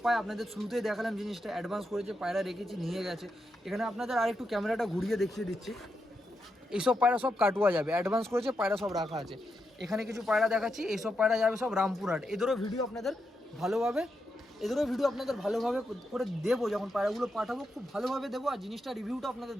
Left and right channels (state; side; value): normal; both; correlation 0.84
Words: পায়, আপনাদের শুরুতেই দেখালাম জিনিসটা, অ্যাডভান্স করেছে, পায়রা রেখেছি, নিয়ে গেছে। এখানে আপনাদের আরেকটু ক্যামেরাটা ঘুরিয়ে দেখিয়ে দিচ্ছি, এইসব পায়রা সব কাটুয়া যাবে, অ্যাডভান্স করেছে, পায়রা সব রাখা আছে। এখানে কিছু পায়রা দেখাচ্ছি, এইসব পায়রা যাবে সব রামপুরহাট। এদেরও ভিডিও আপনাদের ভালোভাবে করে দেবো, যখন পায়রাগুলো পাঠাবো খুব ভালোভাবে দেবো, আর জিনিসটা রিভিউটা আপনাদের